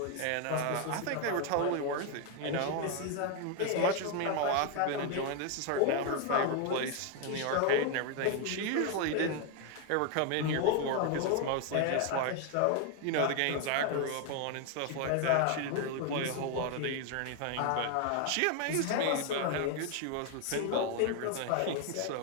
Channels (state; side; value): different; both; correlation 0.01